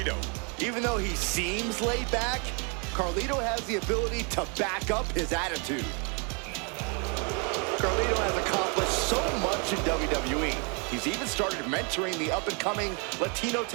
Even though he seems laid back, Carlito has the ability to back up his attitude. Carlito has accomplished so much in WWE. He's even started mentoring the up-and-coming Latino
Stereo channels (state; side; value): quieter; left; 34.7 dB